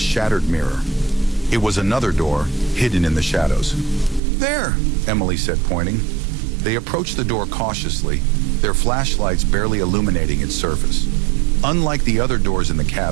mirror. It was another door, hidden in the shadows. "There," Emily said, pointing. They approached the door cautiously, their flashlights barely illuminating its surface. Unlike the other doors in the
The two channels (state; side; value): drops out; left; at 4.2 s